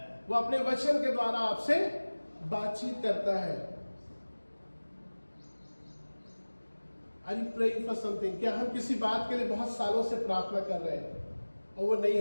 वो अपने वचन के द्वारा आपसे बातचीत करता है. Are you praying for something? क्या हम किसी बात के लिए बहुत सालों से प्रार्थना कर रहे हैं और वो नहीं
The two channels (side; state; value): both; inverted; correlation -1.00